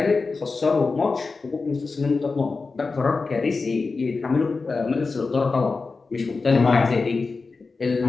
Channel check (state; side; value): quieter; right; 4.2 dB